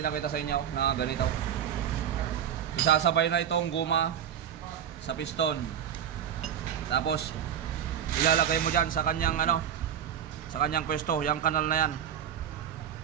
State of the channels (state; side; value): quieter; left; 9.2 dB